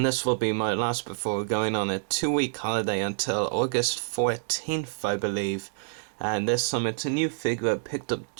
this will be my last before going on a 2-week holiday until August 14th I believe. And this time it's a new figure I picked up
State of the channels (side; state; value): left; silent; digital silence